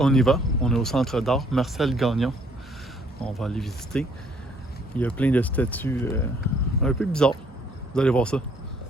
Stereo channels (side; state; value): both; normal; correlation 0.64